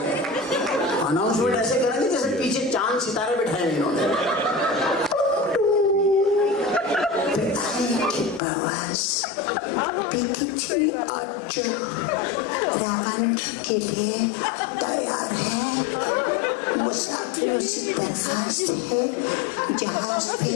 अनाउंसमेंट ऐसे करेंगे जैसे पीछे चांद सितारे बिठाए इन्होंने। के लिए तैयार है, मुसाफिरों से दरखास्त है जहाज पे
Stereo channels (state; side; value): drops out; right; at 8.4 s